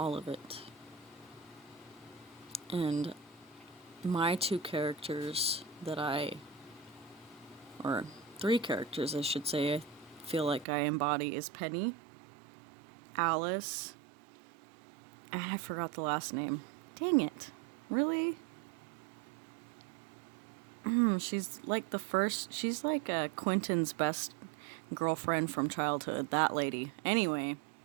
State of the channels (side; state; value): left; drops out; at 10.7 s